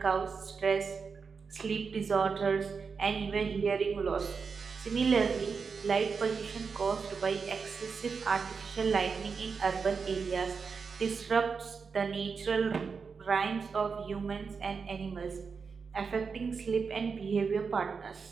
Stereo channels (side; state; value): left; quieter; 5.4 dB